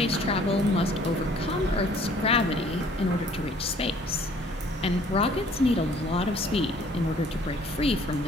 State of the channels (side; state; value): both; normal; correlation 0.57